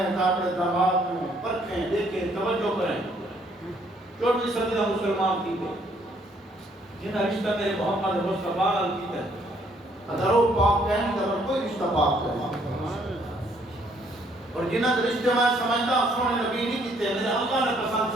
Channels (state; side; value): normal; both; correlation 0.66